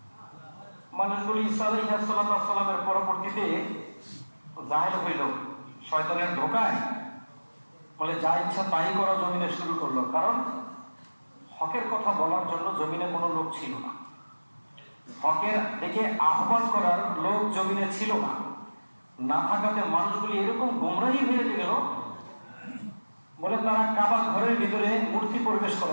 মানুষগুলি ঈসা আলাইহিস সালামের পরবর্তীতে জাহেল হইল শয়তানের ধোকায়, বলে যা ইচ্ছা তাই করা জমিনে শুরু করলো। কারণ হকের কথা বলার জন্য জমিনে কোনো লোক ছিল না, হকের দিকে আহ্বান করার লোক জমিনে ছিল না। না থাকাতে মানুষগুলি এরকম গোমরাহি হয়ে গেল, বলে তারা কাবা ঘরের ভিতরে মূর্তি প্রবেশ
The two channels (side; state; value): both; inverted; correlation -1.00